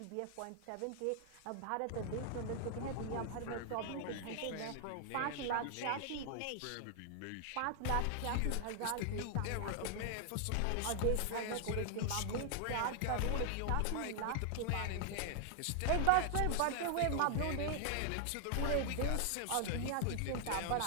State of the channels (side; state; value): both; different; correlation 0.00